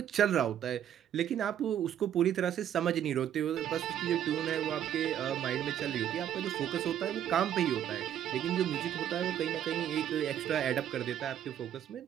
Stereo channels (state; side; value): quieter; left; 10.3 dB